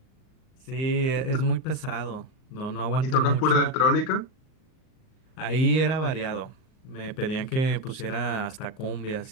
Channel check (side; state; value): right; late; 38 ms